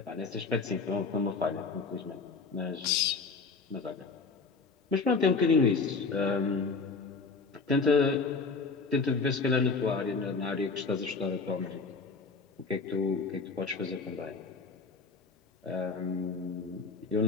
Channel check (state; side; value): quieter; right; 4.5 dB